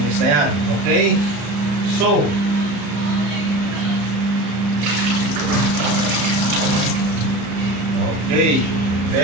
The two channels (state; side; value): late; left; 35 ms